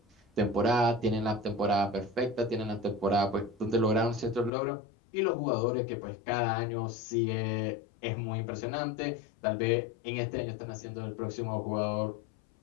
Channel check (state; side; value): drops out; right; at 4.5 s